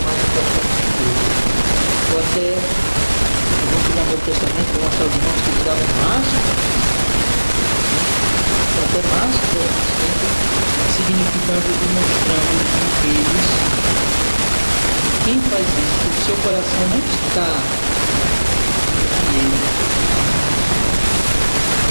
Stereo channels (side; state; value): both; inverted; correlation -1.00